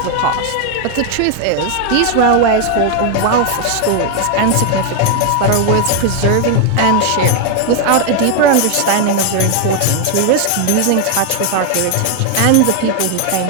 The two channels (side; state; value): both; different; correlation 0.00